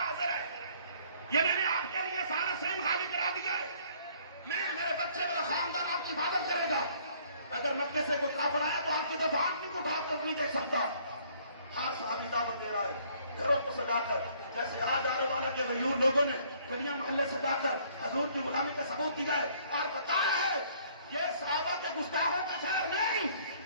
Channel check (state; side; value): inverted; both; correlation -0.60